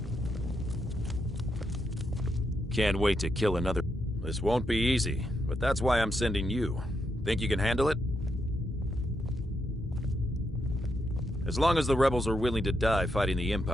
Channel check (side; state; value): both; normal; correlation 0.81